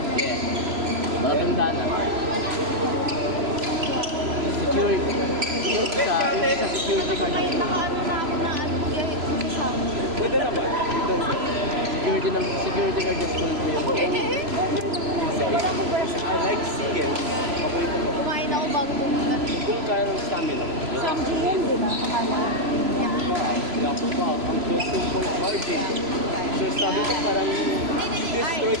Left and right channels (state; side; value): late; left; 3.0 ms